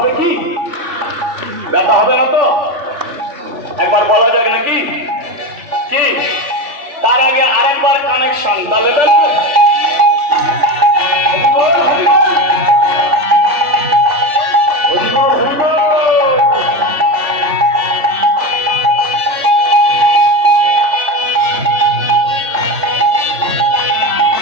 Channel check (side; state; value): left; late; 3.4 ms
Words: কি? ব্যথা হবে না তো? একবার বলা যাবে নাকি? কি তার আগে আরেকবার কানেকশন, তাহলে